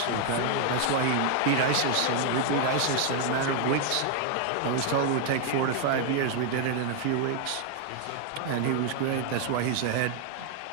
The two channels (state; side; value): different; both; correlation 0.00